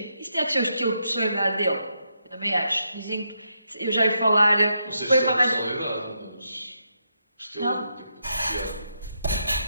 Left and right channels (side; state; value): both; inverted; correlation -0.81